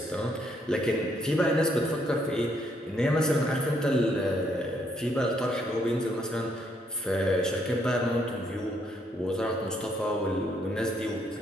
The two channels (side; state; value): both; normal; correlation 0.72